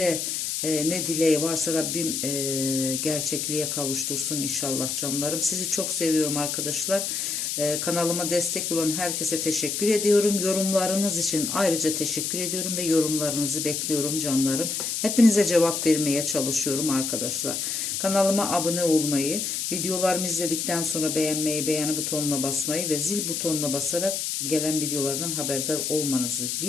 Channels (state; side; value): noise; left; hiss, 2 dB below the sound